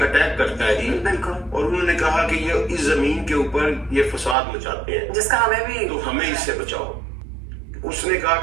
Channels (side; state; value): left; drops out; at 4.4 s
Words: اٹیک کرتا ہے. بالکل. اور انہوں نے کہا کہ یہ اس زمین کے اوپر یہ فساد مچاتے ہیں، جس کا ہمیں بھی، تو ہمیں اس سے بچاؤ. اس نے کہا